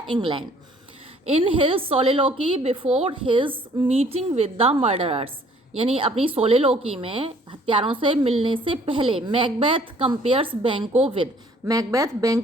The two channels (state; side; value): normal; both; correlation 0.58